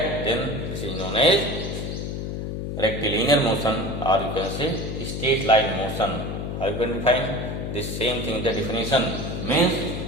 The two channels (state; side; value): noise; left; hum, 4 dB below the sound